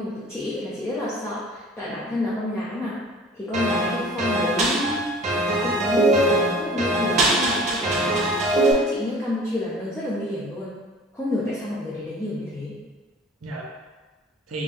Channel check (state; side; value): normal; both; correlation 0.46